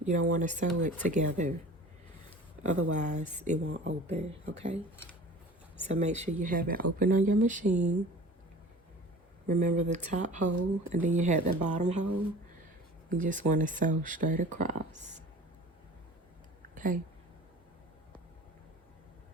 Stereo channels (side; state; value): both; normal; correlation 0.42